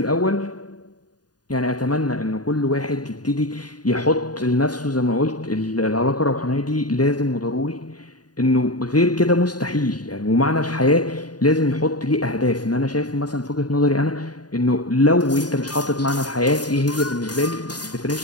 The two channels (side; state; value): right; late; 0.69 ms